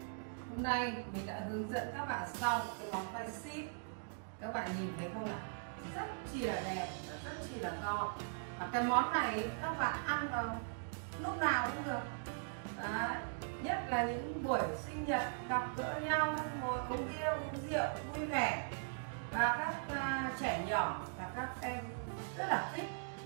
Hôm nay mình đã hướng dẫn các bạn xong cái món khoai ship. Các bạn nhìn thấy không nào? Rất chi là đẹp và rất chi là ngon. Và cái món này các bạn ăn vào lúc nào cũng được. Đấy. Nhất là những buổi sinh nhật gặp gỡ nhau, ngồi uống bia uống rượu vui vẻ. Và các trẻ nhỏ và các em rất là thích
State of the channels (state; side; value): silent; left; digital silence